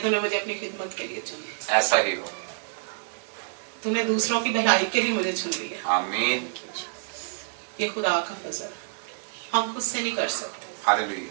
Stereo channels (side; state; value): left; silent; 60 dB below the other